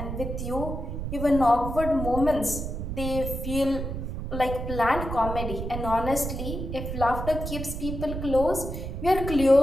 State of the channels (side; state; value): right; noise; rumble, 5 dB below the sound